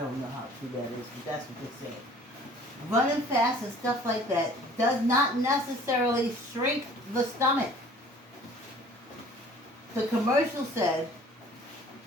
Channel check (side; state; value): both; normal; correlation 0.51